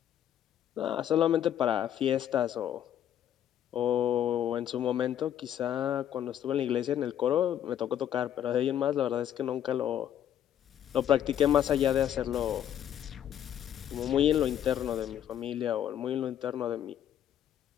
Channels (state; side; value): quieter; right; 10.4 dB